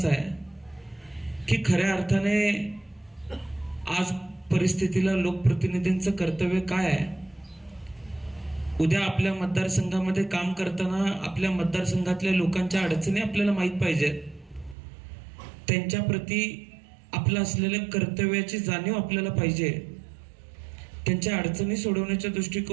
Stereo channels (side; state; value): left; drops out; at 14.8 s